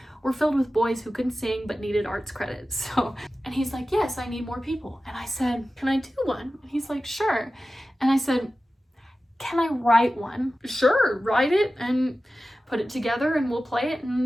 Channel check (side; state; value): both; normal; correlation 0.95